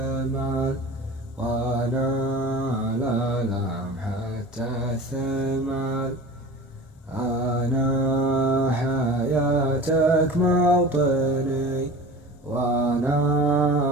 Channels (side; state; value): both; normal; correlation 0.37